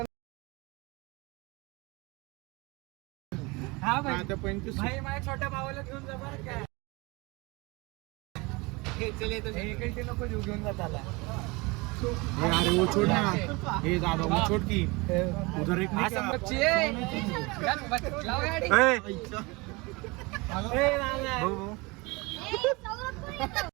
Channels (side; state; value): left; quieter; 25.4 dB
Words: हा भाई भाई माझ्या छोट्या भावाला घेऊन जा बरं काय. हे नको घेऊन जात आला. अरे वो छोड़ ना. हे दादा वो छोड़ की उधर एक असं बच्ची आहे. लाव गाडी. ए, ए, लाव, लाव. भाऊ, भाऊ. ए, सौरभ कोण येतो?